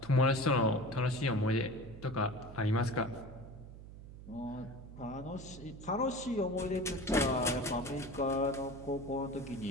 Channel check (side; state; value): right; noise; hum, 15 dB below the sound